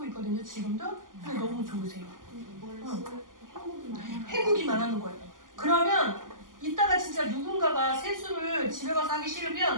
있거든요. 지금도. 근데 너무 좋으세요. 해보기만 하는 거예요. 그러면 이따가 진짜 누군가가 세수를 집에 가서 하기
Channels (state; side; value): late; left; 0.89 ms